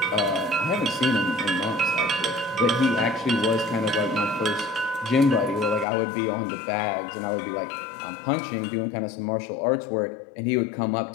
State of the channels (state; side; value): drops out; right; at 5.9 s